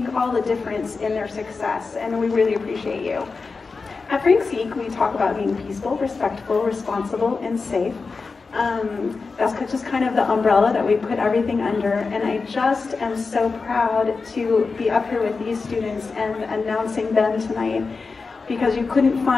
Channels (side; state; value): right; quieter; 4.4 dB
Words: all the difference in their success, and we really appreciate you. At Frank Zeke, we talk about being peaceful, respectful, responsible, and safe. That's just kind of the umbrella that we put everything under, and I just am so proud to be up here with these students and announcing them tonight, because you couldn't